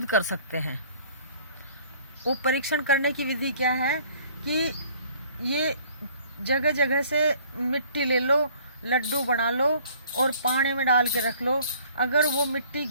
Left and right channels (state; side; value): inverted; both; correlation -0.55